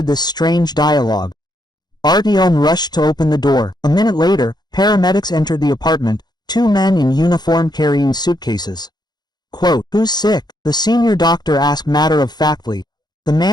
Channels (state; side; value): late; right; 0.20 ms